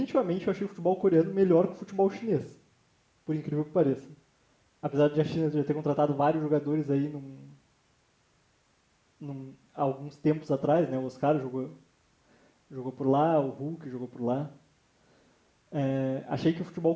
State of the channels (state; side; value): identical; both; correlation 1.00